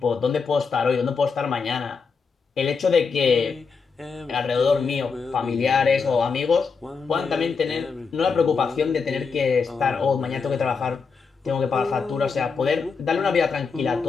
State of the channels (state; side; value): quieter; right; 5.2 dB